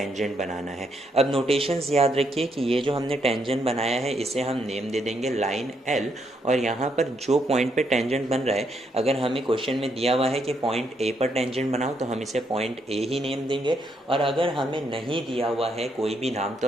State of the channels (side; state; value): both; normal; correlation 0.75